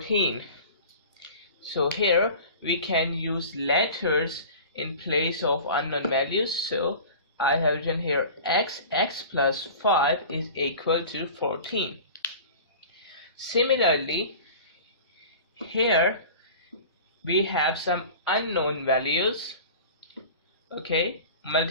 So here we can use letters in place of unknown values. So I have written here x plus 5 is equal to 14. Similarly, here we have some unknown values, okay,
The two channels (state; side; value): inverted; both; correlation -0.39